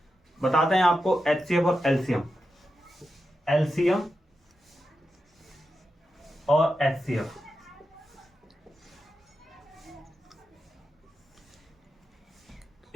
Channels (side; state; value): both; normal; correlation 0.89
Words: बताते हैं आपको एचसीएफ और एलसीएम और एचसीएफ।